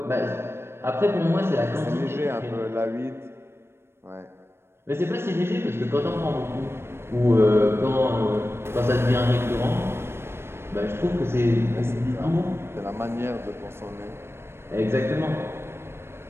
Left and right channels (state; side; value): late; left; 0.12 ms